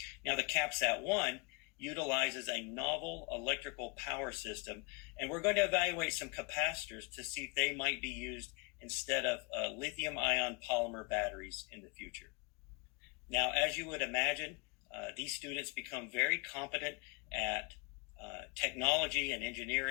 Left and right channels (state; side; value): quieter; right; 28.2 dB